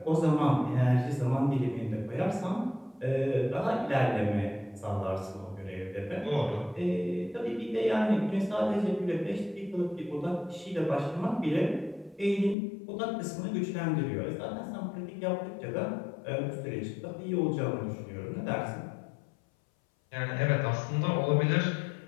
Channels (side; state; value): right; drops out; at 12.6 s